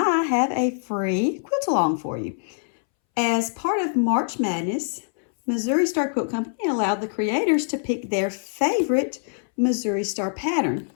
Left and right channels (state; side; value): silent; right; 63 dB below the other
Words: have a free quilt along for you. As part of March Madness, Missouri Star Quilt Company allowed the creators to pick their favorite Missouri Star pattern.